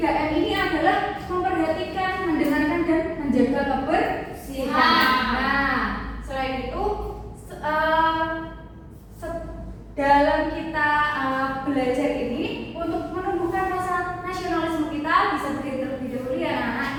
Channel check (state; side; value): identical; both; correlation 1.00